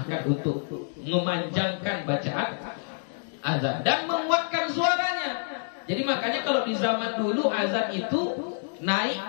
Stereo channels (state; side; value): silent; right; digital silence